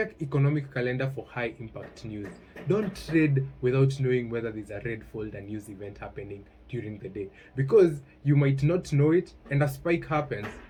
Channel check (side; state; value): both; identical; correlation 1.00